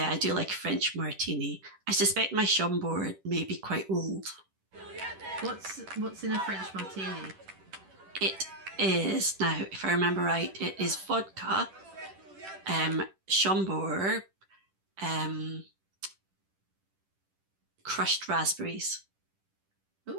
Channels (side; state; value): left; late; 10 ms